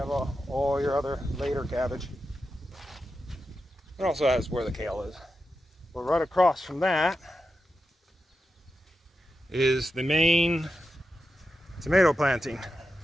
all your other later cabbage. It also has where the kale is. But right across from that is the main tomato planting.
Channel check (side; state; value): both; normal; correlation 0.89